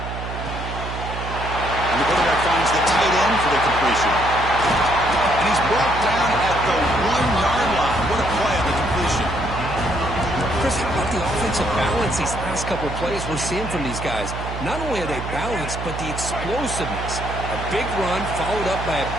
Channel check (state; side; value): noise; right; hum, 7 dB below the sound